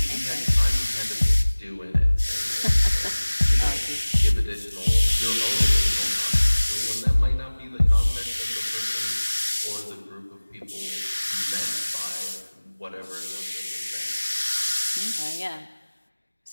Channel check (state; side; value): inverted; both; correlation -1.00